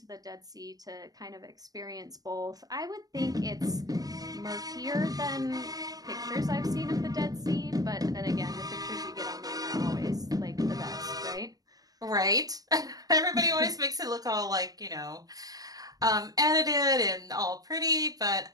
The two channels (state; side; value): late; left; 0.18 ms